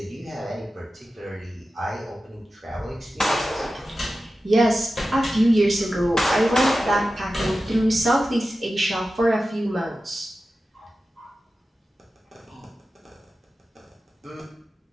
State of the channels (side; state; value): both; normal; correlation 0.93